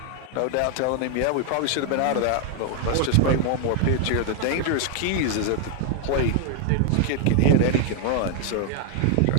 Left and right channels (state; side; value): different; both; correlation 0.00